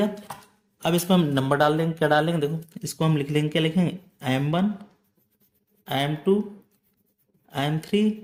अब इसमें हम नंबर डाल देंगे। क्या डालेंगे, देखो इसको हम लिख लेंगे, क्या लिखेंगे, M1, M2, M3,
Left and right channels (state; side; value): identical; both; correlation 1.00